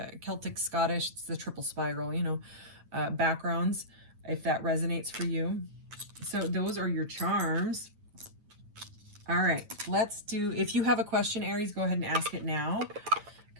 Scottish. It's the triple spiral, you know, backgrounds, if that resonates for you. So those are your charms. All right, let's do, if you have a question, Aries, go ahead and ask it now.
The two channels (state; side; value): late; left; 9.2 ms